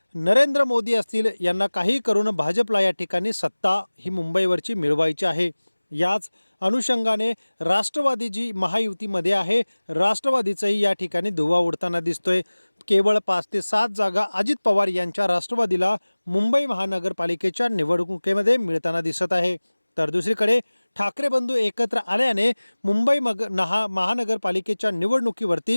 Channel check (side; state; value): both; inverted; correlation -1.00